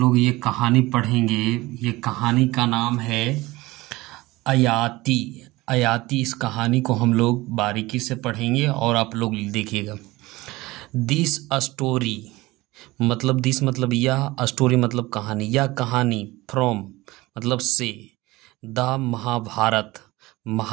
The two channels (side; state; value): left; quieter; 20.2 dB